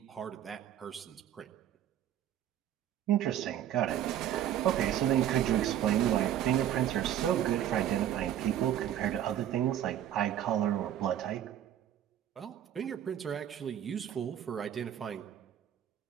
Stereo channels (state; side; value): quieter; left; 11.0 dB